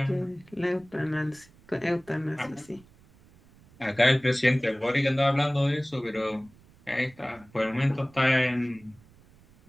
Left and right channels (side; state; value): right; noise; rumble, 27 dB below the sound